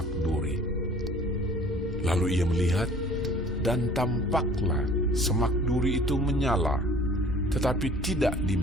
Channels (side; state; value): both; normal; correlation 0.51